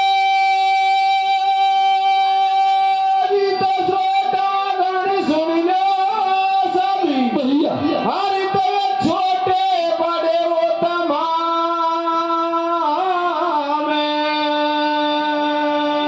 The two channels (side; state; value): both; identical; correlation 1.00